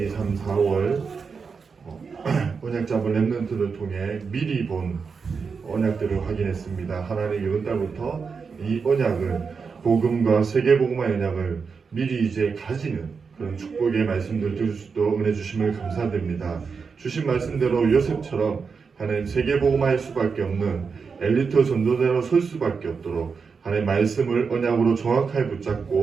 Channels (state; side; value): quieter; left; 5.4 dB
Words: 2, 3, 4월 언약 잡은 랩넌트를 통해 미리 본 언약들을 확인했습니다. 하나님 이번 달부터 이 언약을 복음과 세계복음화 언약을 미리 이제 가지는 그런 축복의 말씀들 들을 수 있도록 은혜 주심을 감사드립니다. 주신 말씀대로 요셉처럼 하나님 세계복음화할 수밖에 없는 엘리트 전도자로 설 수밖에 없도록 하나님 말씀을 언약으로 정확하게